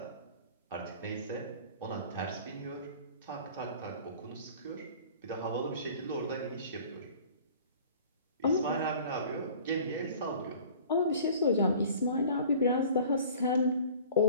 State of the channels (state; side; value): inverted; both; correlation -0.46